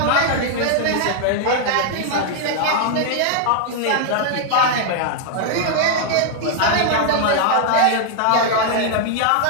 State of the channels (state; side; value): different; both; correlation 0.00